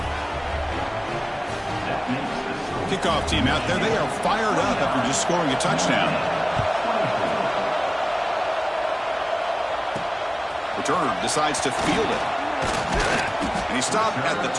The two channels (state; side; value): identical; both; correlation 1.00